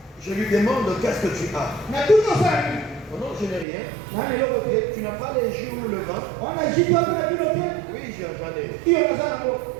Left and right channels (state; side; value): drops out; left; at 3.7 s